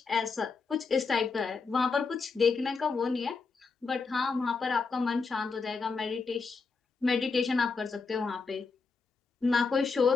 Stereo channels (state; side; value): quieter; right; 4.6 dB